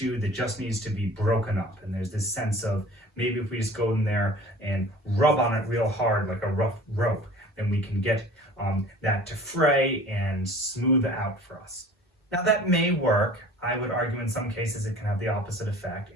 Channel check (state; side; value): normal; both; correlation 0.44